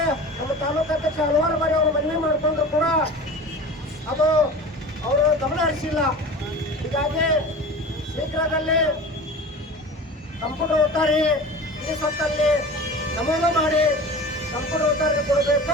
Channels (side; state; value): both; normal; correlation 0.36